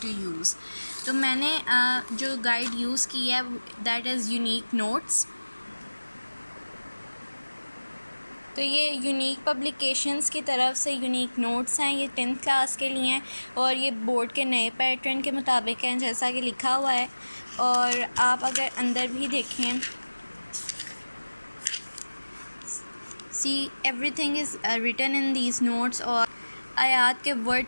use. तो मैंने जो गाइड यूज़ की है दैट इज़ यूनिक नोट्स। तो ये यूनिक पब्लिकेशंस की तरफ से यूनिक नोट्स हैं, ये 10th क्लास के लिए हैं और ये बोर्ड के नए पैटर्न के मुताबिक हैं जैसा कि लिखा हुआ है। और आप अगर अंदर भी देखें, see everything is written in these notes, और आयात के वर्ड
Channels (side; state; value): both; inverted; correlation -1.00